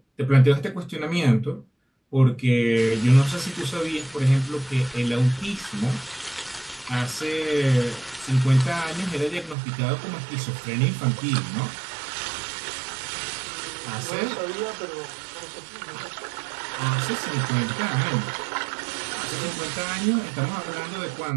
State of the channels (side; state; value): left; drops out; at 9.6 s